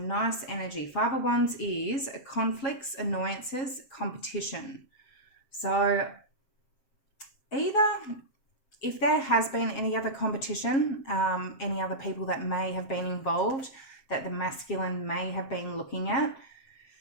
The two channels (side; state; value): right; late; 7.7 ms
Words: energy. 5 of Wands is conflicts, annoyances, competition. So either if there has been any other competition, any other people that may have been involved that the masculine may have been looking at,